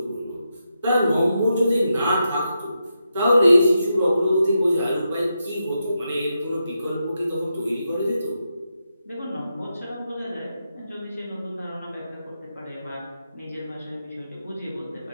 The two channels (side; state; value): both; inverted; correlation -0.86